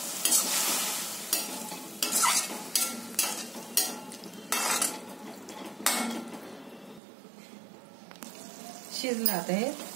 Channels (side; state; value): left; drops out; at 7.0 s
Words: शिजलं आता हे